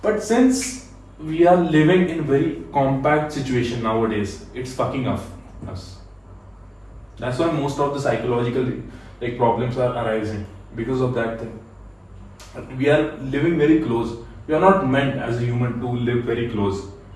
since we are living in very compact situation nowadays, it's fucking up us. That's why most of the psychological problems are arising because of that thing. We are living very close. We are not meant as a human to live very close.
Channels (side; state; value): both; identical; correlation 1.00